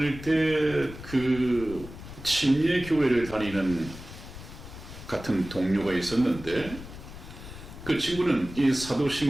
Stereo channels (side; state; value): left; noise; rumble, 13 dB below the sound